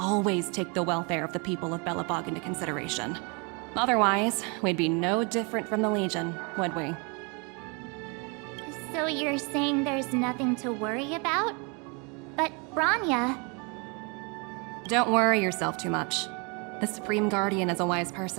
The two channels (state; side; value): quieter; left; 32.4 dB